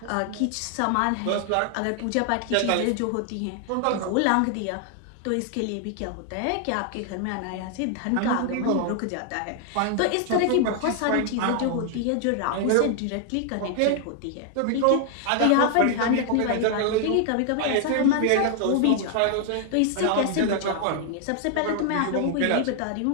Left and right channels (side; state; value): both; different; correlation 0.00